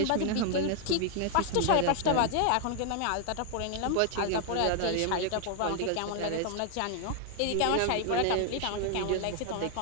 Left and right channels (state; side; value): different; both; correlation 0.00